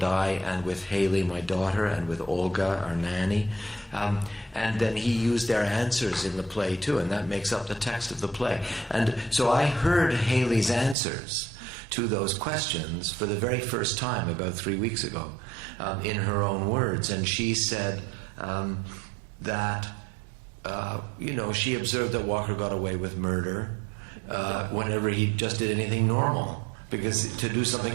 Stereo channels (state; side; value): drops out; left; at 11.0 s